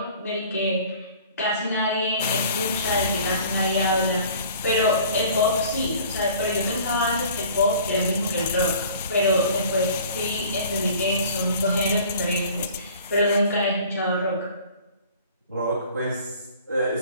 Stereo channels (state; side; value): inverted; both; correlation -0.48